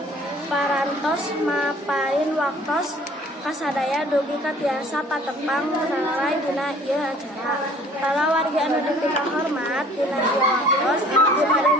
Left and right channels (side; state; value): both; normal; correlation 0.53